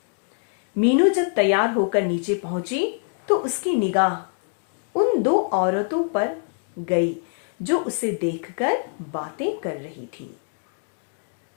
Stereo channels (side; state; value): right; silent; 56 dB below the other